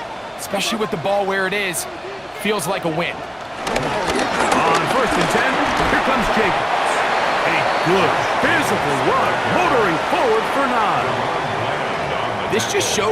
especially with the ball where it is, feels like a win. On 1st and 10, here comes Jacobs. A good physical run, motoring forward for 9. This just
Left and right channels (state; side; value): identical; both; correlation 1.00